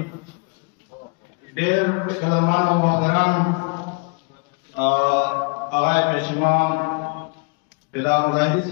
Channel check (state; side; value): quieter; right; 32.3 dB